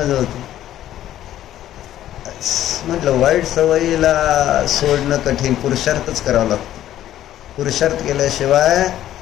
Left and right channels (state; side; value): quieter; right; 12.5 dB